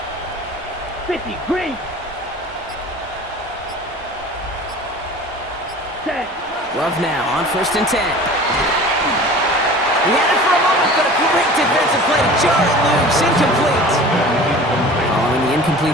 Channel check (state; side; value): normal; both; correlation 0.41